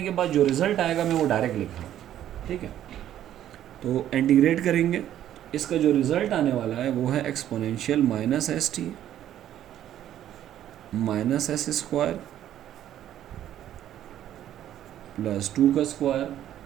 के बाद जो रिज़ल्ट आएगा मैं वो डायरेक्ट लिख रहा हूँ, ठीक है। तो इंटीग्रेट करेंगे, इसका जो रिज़ल्ट आने वाला है वो है exponential minus S T minus S square plus 2 का square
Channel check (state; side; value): quieter; left; 11.6 dB